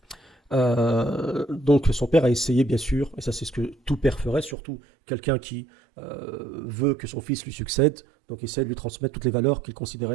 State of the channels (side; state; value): left; drops out; at 4.5 s